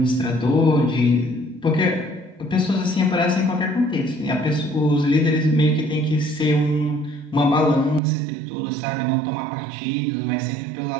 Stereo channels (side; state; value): left; drops out; at 8.0 s